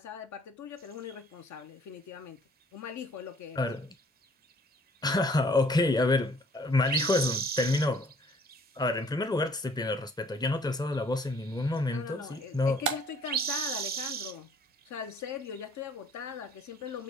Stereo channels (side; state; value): both; normal; correlation 0.58